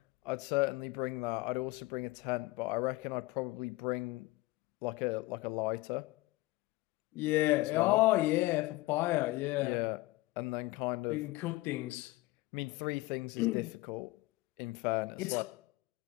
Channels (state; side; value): quieter; right; 20.4 dB